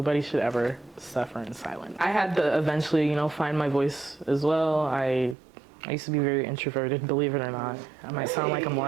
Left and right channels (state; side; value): drops out; left; at 5.4 s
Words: should ever suffer in silence. I had to eventually, you know, find my voice as well. I used to be very introverted, believe it or not. I might sound like I'm